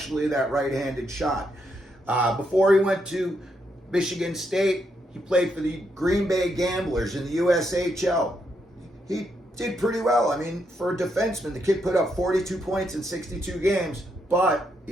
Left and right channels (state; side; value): normal; both; correlation 0.79